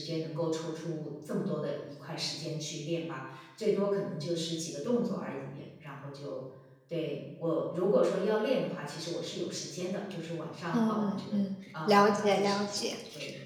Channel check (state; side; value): identical; both; correlation 1.00